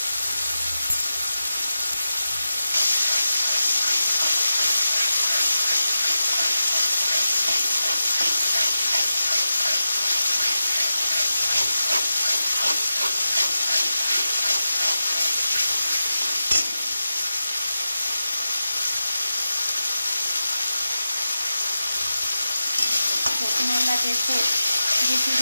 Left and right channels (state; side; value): inverted; both; correlation -0.91